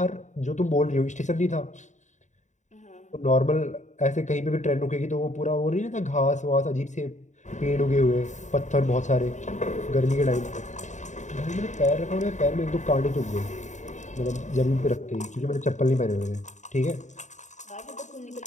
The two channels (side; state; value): right; late; 0.35 ms